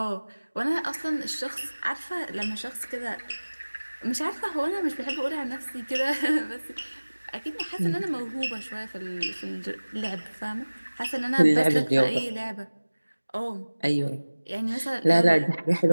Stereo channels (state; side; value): inverted; both; correlation -1.00